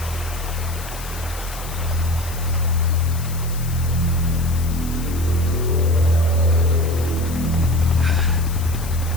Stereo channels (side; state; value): left; noise; hiss, 14 dB below the sound